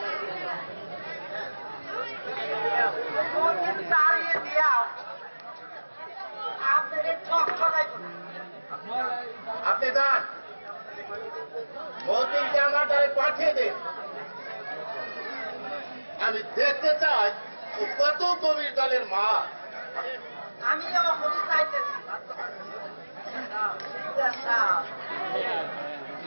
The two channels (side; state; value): both; inverted; correlation -1.00